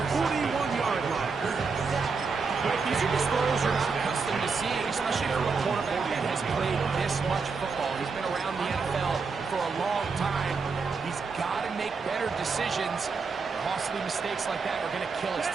41-yard line. But these are just throws you're not accustomed to seeing, especially from a quarterback that has played this much football. He's been around the NFL for a long time. He's got to make better decisions. Costly mistakes like that are going to kill his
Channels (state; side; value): quieter; left; 4.9 dB